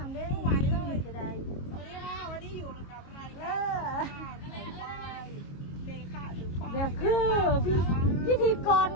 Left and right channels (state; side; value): late; right; 22 ms